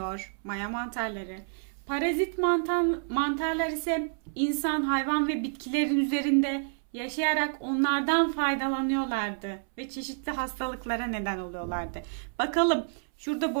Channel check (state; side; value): silent; left; 59 dB below the other